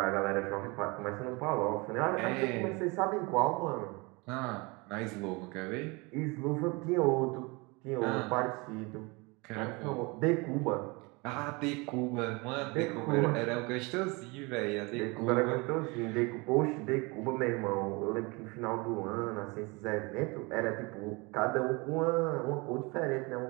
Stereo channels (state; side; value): quieter; left; 27.0 dB